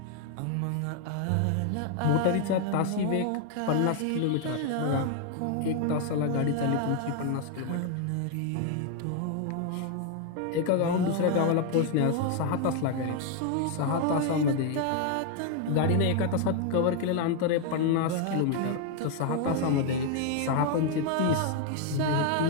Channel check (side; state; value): both; different; correlation 0.00